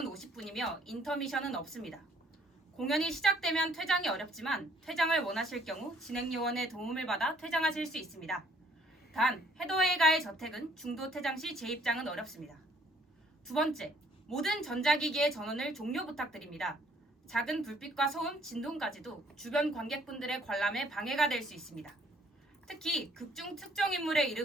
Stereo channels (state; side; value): normal; both; correlation 0.62